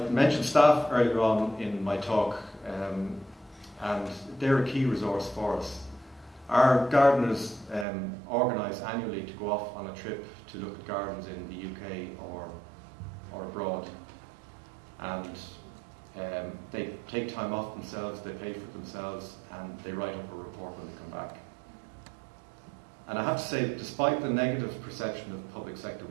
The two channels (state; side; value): drops out; left; at 7.9 s